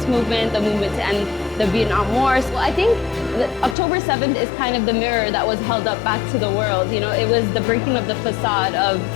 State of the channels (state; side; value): drops out; right; at 3.8 s